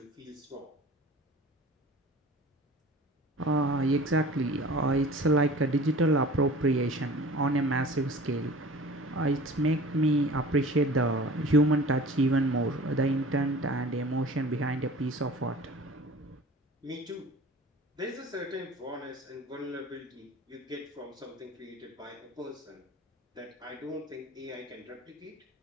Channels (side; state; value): both; normal; correlation 0.42